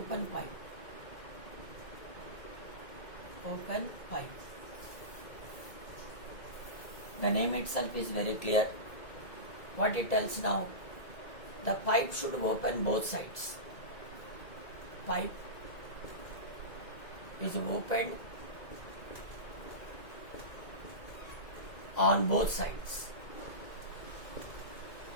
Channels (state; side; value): late; right; 2.0 ms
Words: pipe. Open pipe. The name itself is very clear. What it tells now, the pipe should open both sides. Pipe is opened on both sides.